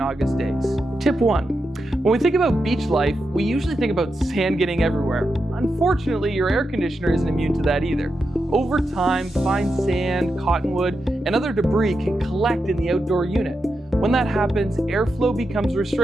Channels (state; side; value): normal; both; correlation 0.87